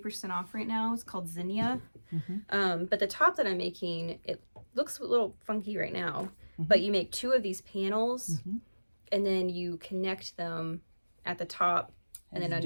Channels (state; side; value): inverted; both; correlation -1.00